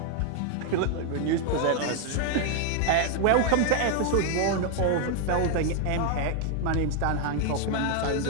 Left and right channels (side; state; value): both; different; correlation 0.01